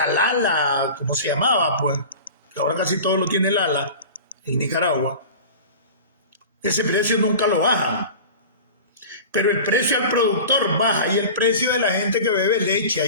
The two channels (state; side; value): inverted; both; correlation -0.36